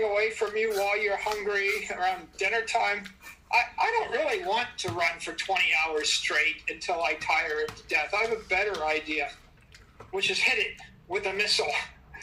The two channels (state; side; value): identical; both; correlation 1.00